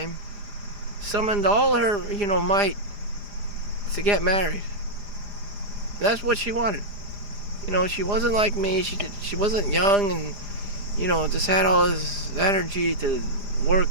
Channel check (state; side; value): late; left; 4.9 ms